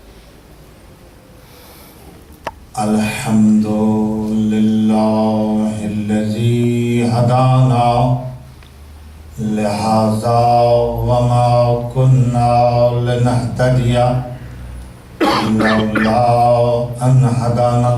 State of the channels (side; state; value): both; identical; correlation 1.00